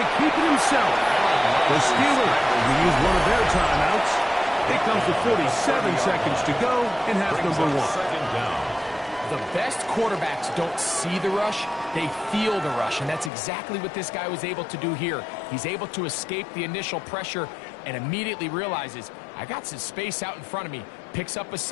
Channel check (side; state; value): right; drops out; at 13.3 s